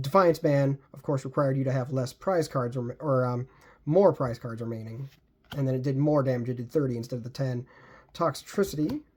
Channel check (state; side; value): identical; both; correlation 1.00